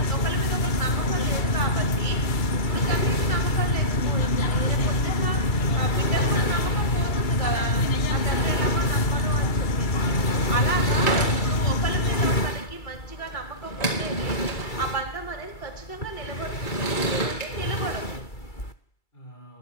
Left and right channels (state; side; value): late; right; 2.3 ms